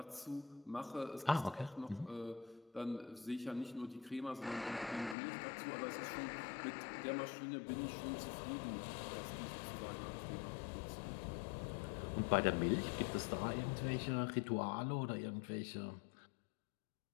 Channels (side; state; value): right; drops out; at 5.2 s